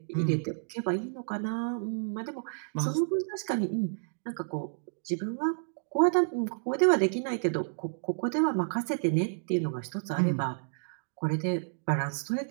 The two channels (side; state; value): left; silent; digital silence